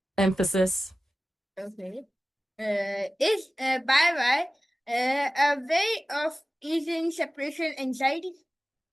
Emphasis. Okay, is bye bye a way of easing separation anxiety?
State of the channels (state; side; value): normal; both; correlation 0.97